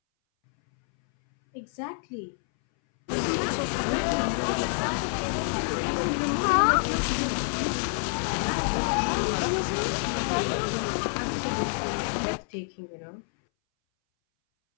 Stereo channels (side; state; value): right; silent; 60 dB below the other